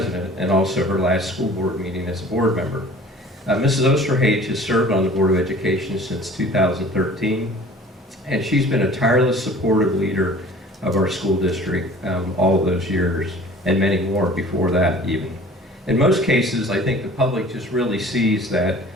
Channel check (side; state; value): both; normal; correlation 0.47